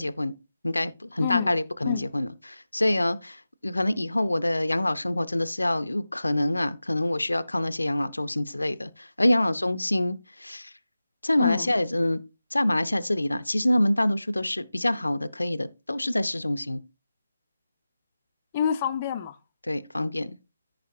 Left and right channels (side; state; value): both; inverted; correlation -0.95